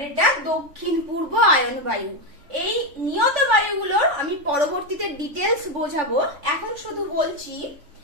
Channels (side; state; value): left; late; 3.5 ms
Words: এটা দক্ষিণ পূর্ব আয়ন বায়ু। এই নিয়ত বায়ুগুলোর আমি পরবর্তীতে ডিটেলস বোঝাবো, এখন শুধু বলছি